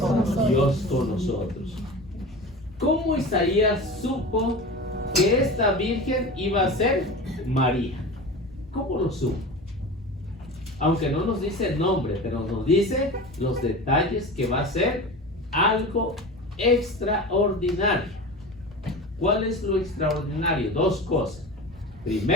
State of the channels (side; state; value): both; normal; correlation 0.32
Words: Dios con nosotros. ¿Cómo Isaías supo que esta virgen iba a ser María? ¿Cómo lo supo? Aunque no nos dice el nombre, pero nos dice los detalles, que va a ser algo extraordinario. ¿Cuál es lo extraordinario? 2 cosas.